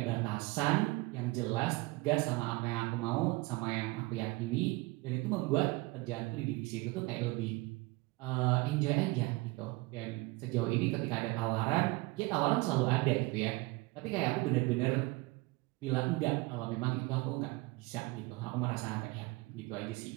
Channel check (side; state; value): left; quieter; 23.6 dB